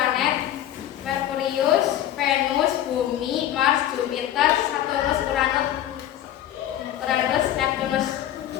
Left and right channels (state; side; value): quieter; right; 12.0 dB